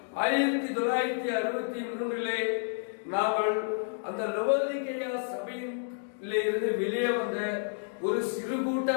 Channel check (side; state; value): right; silent; digital silence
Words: 1963 நாங்கள் அந்த லவோதிக்கேயா சபையிலே இருந்து வெளியே வந்த ஒரு சிறு கூட்ட